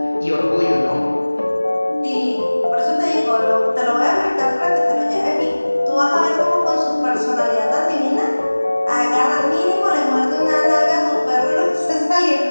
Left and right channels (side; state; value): both; inverted; correlation -1.00